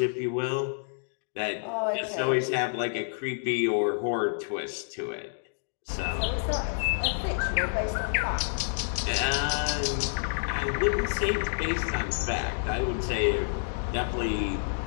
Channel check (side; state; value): right; silent; digital silence